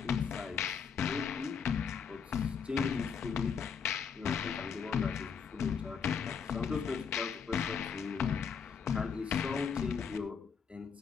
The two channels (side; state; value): right; quieter; 6.5 dB